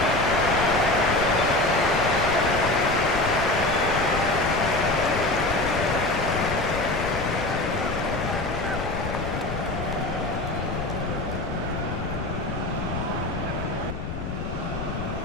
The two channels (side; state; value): left; noise; rumble, 6 dB below the sound